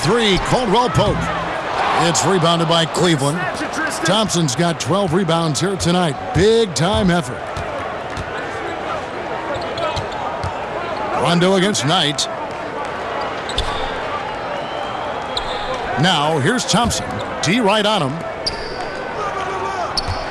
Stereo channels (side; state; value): both; identical; correlation 1.00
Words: Caldwell Pope. It's rebounded by Cleveland. Thompson's got 12 rebounds here tonight. Big time effort. Rondo against Knight. Now here's Thompson. D right on him.